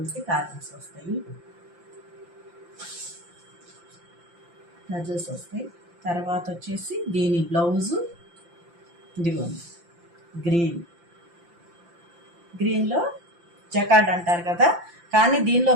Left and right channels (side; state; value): left; late; 5.8 ms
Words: టాజల్స్ వస్తాయి. టాజల్స్ వస్తాయి. తర్వాత వచ్చేసి దీని బ్లౌజు ఇదిగోండి గ్రీన్లో జకార్డ్ అంటారు కదా, కానీ దీనిలో